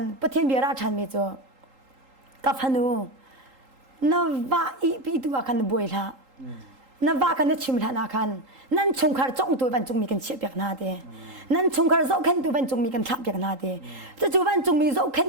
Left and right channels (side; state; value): left; late; 3.8 ms